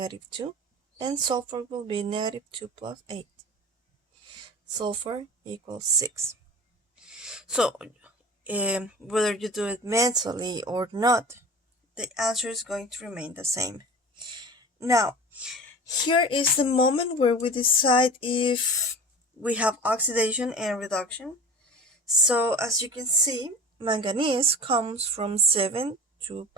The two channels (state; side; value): normal; both; correlation 0.36